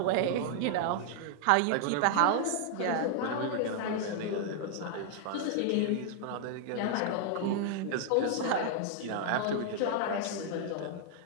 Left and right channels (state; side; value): different; both; correlation 0.00